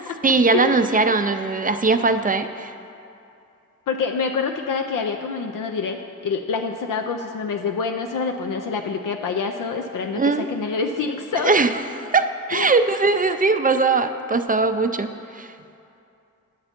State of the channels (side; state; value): both; normal; correlation 0.14